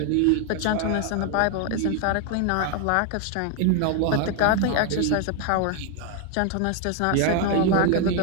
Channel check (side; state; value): both; different; correlation 0.00